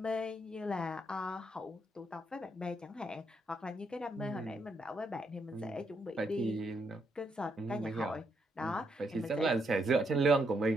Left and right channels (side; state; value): both; normal; correlation 0.77